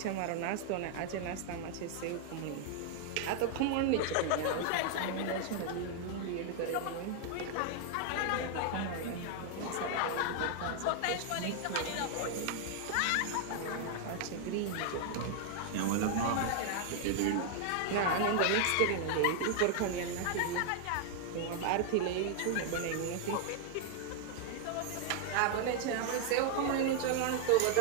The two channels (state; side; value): different; both; correlation 0.00